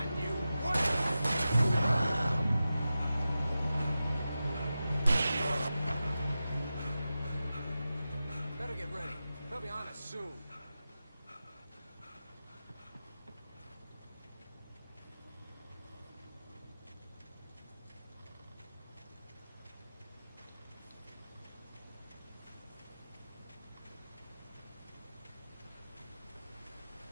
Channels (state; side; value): inverted; both; correlation -0.93